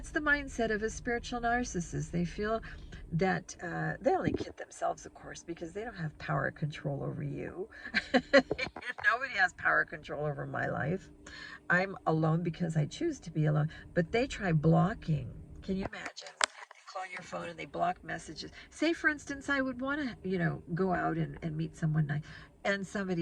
the mindset of a spiritual narcissist. They feel that they only kid themselves, of course, because they don't have power control over you. Nobody has power control over my life. I'm alone because I choose to be alone. But they try blocking. Can you imagine? They call your phone and they block messages. Say, for instance, I would want to, go out and meet someone nice, and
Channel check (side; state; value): both; identical; correlation 1.00